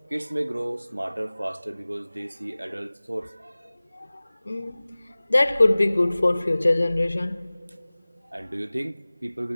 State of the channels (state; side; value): inverted; both; correlation -0.99